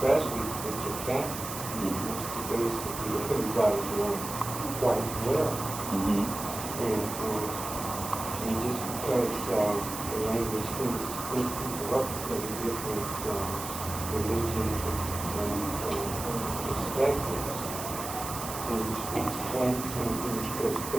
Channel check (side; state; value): right; noise; hiss, 8 dB below the sound